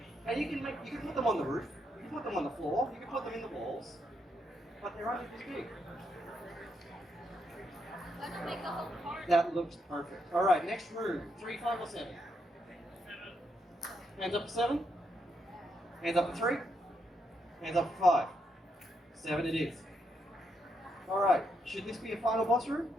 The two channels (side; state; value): both; normal; correlation 0.79